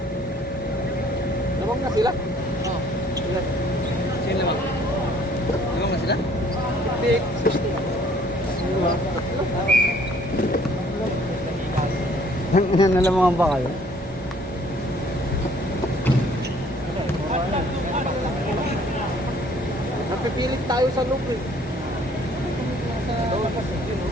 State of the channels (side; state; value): both; normal; correlation 0.59